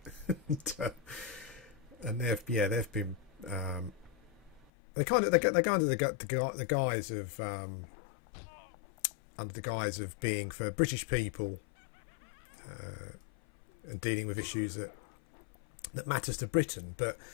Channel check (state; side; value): drops out; right; at 4.7 s